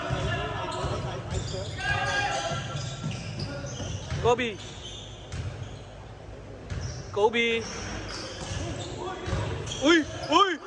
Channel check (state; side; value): identical; both; correlation 1.00